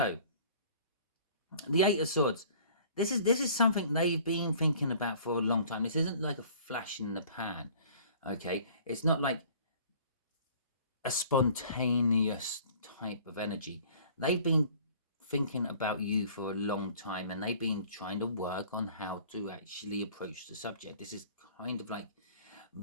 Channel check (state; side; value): inverted; both; correlation -0.51